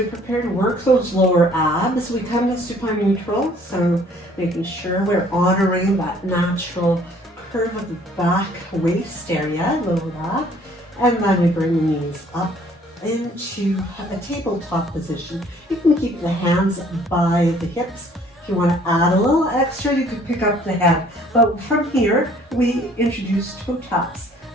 prepare to work those lower abs, we come to supine neutral, so making sure we're honoring that natural curve of the back waist area, lower back, and then we bring the knees up into a tabletop position. You can keep the hands by the hips. If you want to add a little extra, you could pick up the head. But from here, we introduce toe taps.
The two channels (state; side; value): normal; both; correlation 0.58